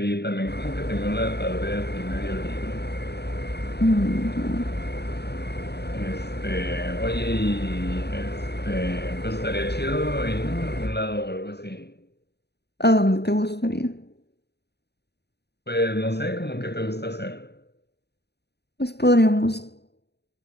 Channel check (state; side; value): late; right; 0.48 ms